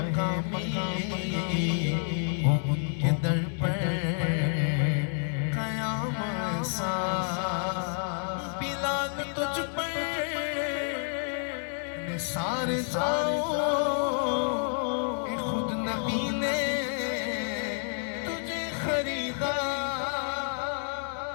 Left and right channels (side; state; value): right; silent; 58 dB below the other